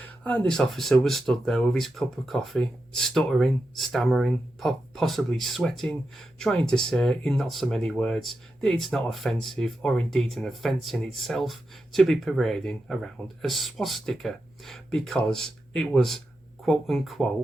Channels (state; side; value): normal; both; correlation 0.89